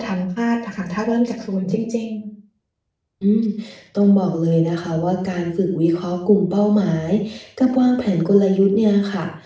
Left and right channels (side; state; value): both; identical; correlation 1.00